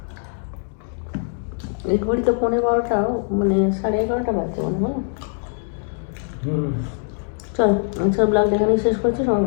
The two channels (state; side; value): silent; right; 62 dB below the other